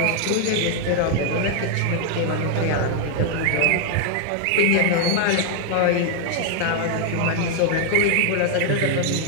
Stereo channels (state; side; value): different; both; correlation 0.00